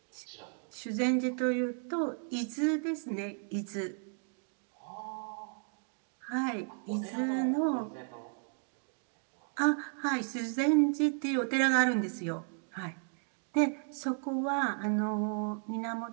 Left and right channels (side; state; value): left; silent; 55 dB below the other